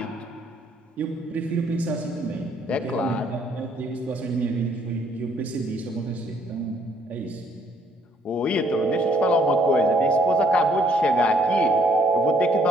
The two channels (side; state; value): both; normal; correlation 0.66